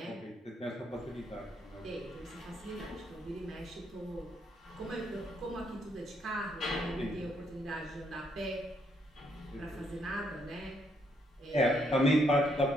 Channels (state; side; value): normal; both; correlation 0.73